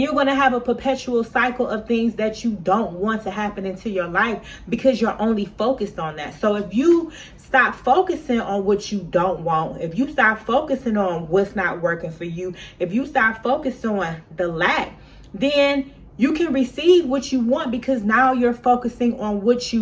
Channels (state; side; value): identical; both; correlation 1.00